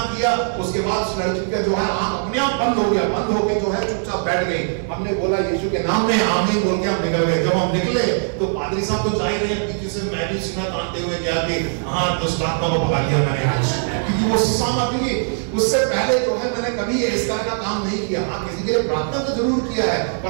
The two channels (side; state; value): left; silent; digital silence